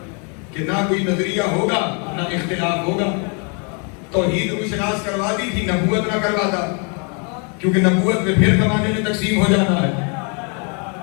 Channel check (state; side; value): quieter; right; 36.2 dB